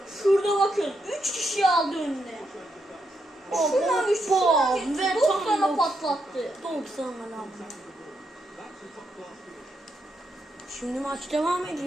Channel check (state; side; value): normal; both; correlation 0.81